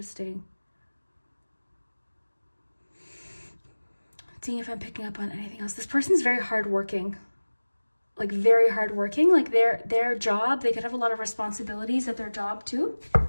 Seeing if I'm picking up on anything else. This person's very hardworking. Like, very hardworking. Like, their job, they could have a lot of responsibilities at their job too.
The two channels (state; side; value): inverted; both; correlation -1.00